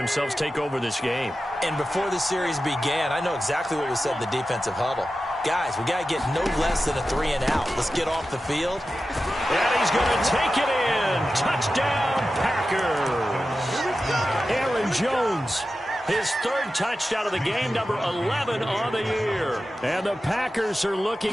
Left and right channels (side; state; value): both; normal; correlation 0.93